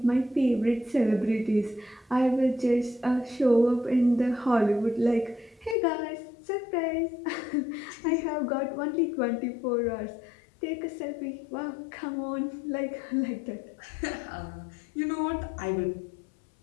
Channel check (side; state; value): right; drops out; at 5.8 s